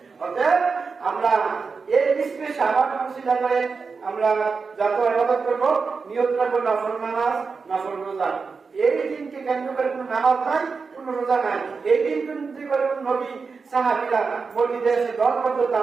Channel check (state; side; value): quieter; left; 4.9 dB